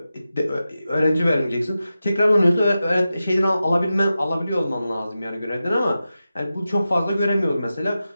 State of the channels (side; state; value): both; inverted; correlation -0.92